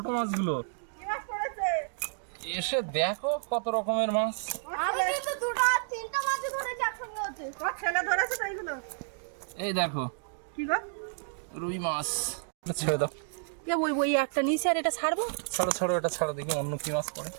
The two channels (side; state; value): left; silent; digital silence